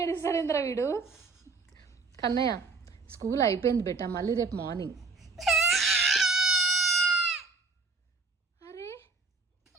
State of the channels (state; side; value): quieter; left; 4.1 dB